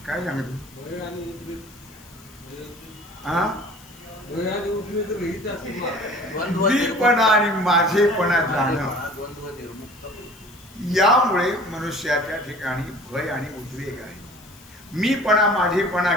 काय सांगतो मीपणा आणि माझेपणा जाणं यामुळे मनुष्याच्या ठिकाणी भय आणि उद्वेग आहे. मीपणा माझेपणा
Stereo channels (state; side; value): noise; left; hiss, 24 dB below the sound